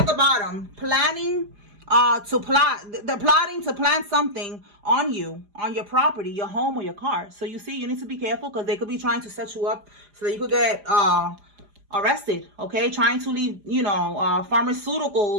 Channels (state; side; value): late; left; 4.9 ms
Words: the bottom. Planning they're plotting to plant something on you, on your property, your home, or your car. So you see, you need to be careful, because they could be trying to set you up so that you could get arrested. Okay, trying to leave, you know,